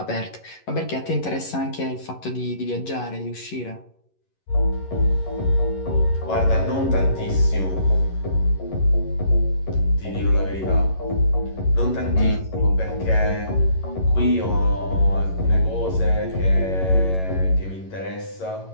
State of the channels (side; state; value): right; late; 11 ms